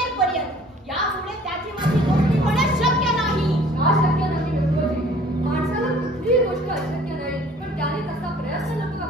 यामुळे त्याची माझी गोष्टी होणं शक्य नाही. का शक्य नाही व्यंकोजी? माणसाला कुठलीही गोष्ट अशक्य नाही, पण त्याने तसा प्रयत्न नको का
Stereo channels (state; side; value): normal; both; correlation 0.53